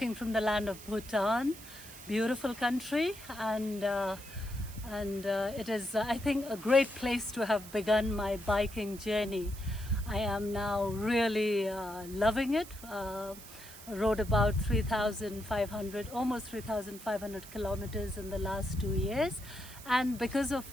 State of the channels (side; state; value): right; noise; hiss, 16 dB below the sound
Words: from the land of Bhutan, beautiful country, and it is, I think, a great place to have begun my biking journey. I am now really loving it. Rode about 3,500, almost 3,500 kilometers in the last 2 years. And because